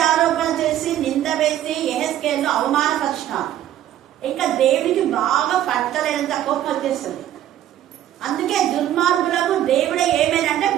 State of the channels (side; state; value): left; quieter; 12.0 dB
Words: చేసి నింద వేసి యెహెజ్కేలు అవమానపరిచినారు. ఇంకా దేవుడికి బాగా పట్టలేనంత కోపం వచ్చేస్తుంది. అందుకే దుర్మార్గులకు దేవుడే ఏమేనంటే